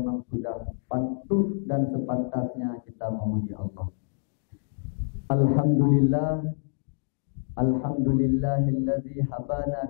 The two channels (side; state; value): right; silent; digital silence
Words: sudah patut dan sepantasnya kita memuji Allah. Alhamdulillah, alhamdulillahilladzi